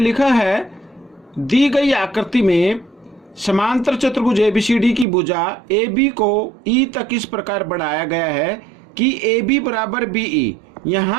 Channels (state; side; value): drops out; left; at 5.1 s